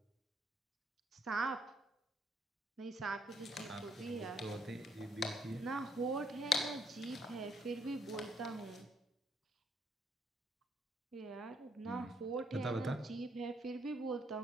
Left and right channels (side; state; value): both; normal; correlation 0.71